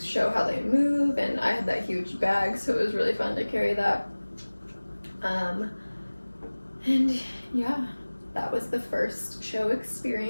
show how they move. And I had that huge bag, so it was really fun to carry that. And yeah, that was the first show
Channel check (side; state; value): both; inverted; correlation -1.00